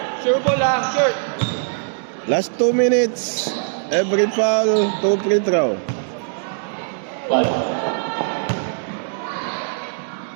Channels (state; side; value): silent; left; digital silence